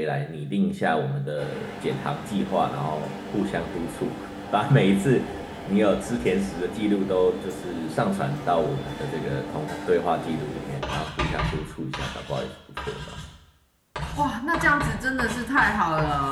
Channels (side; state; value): both; identical; correlation 1.00